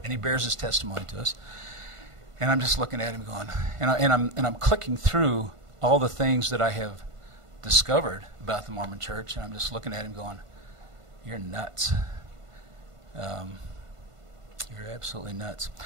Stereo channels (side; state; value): left; late; 1.5 ms